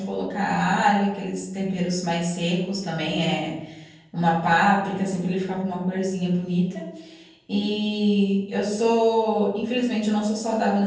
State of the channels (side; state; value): both; identical; correlation 1.00